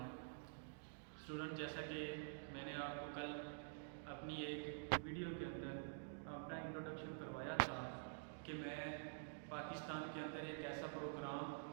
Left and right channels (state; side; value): silent; left; digital silence